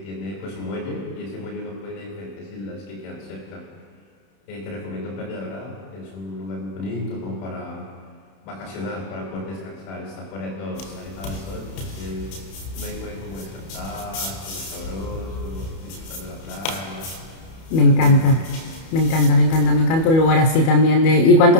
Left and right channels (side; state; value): right; late; 31 ms